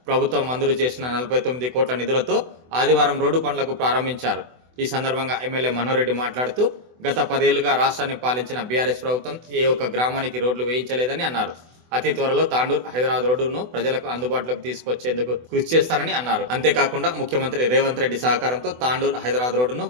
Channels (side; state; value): left; late; 24 ms